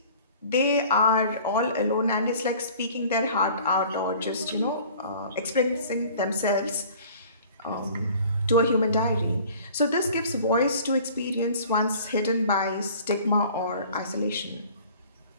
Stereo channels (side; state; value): both; inverted; correlation -0.48